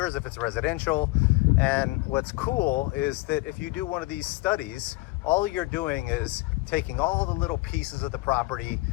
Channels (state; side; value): quieter; right; 21.8 dB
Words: if it's residential. And what's cool is that if you do one of these studies, all you're doing is taking all the little pieces of the property,